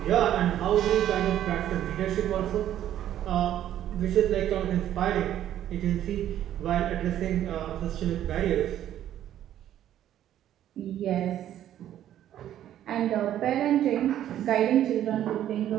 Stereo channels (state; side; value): quieter; left; 11.5 dB